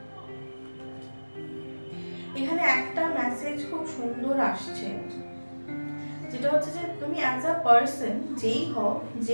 এখানে একটা মেসেজ খুব সুন্দর আসছে, যেটা হচ্ছে যে তুমি অ্যাজ আ পার্সন, যেই হও,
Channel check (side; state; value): both; inverted; correlation -1.00